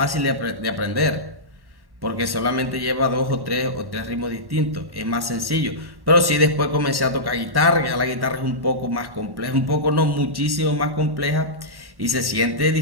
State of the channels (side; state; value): left; late; 1.1 ms